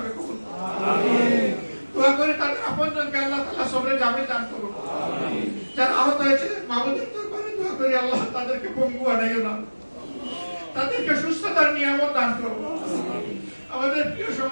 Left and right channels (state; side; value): inverted; both; correlation -1.00